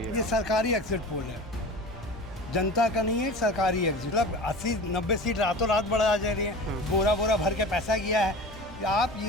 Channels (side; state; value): both; normal; correlation 0.35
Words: सरकारी एग्जिट पोल है, जनता का नहीं है, सरकारी एग्जिट। मतलब 80-90 सीट रातों रात बढ़ा जा रही है, बोरा भर के पैसा किया है। आप